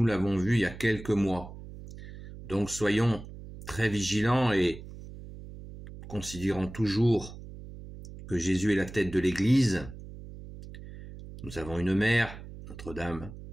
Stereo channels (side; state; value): right; noise; hum, 14 dB below the sound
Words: l'avons vu il y a quelques mois. Donc soyons très vigilants et considérons toujours que Jésus est la tête de l'Église. Nous avons une mère, Notre-Dame,